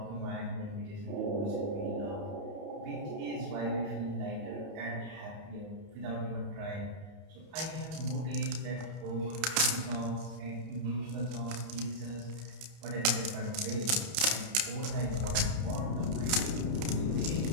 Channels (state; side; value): late; left; 31 ms